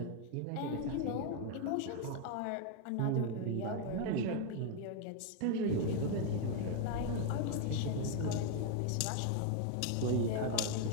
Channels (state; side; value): different; both; correlation 0.01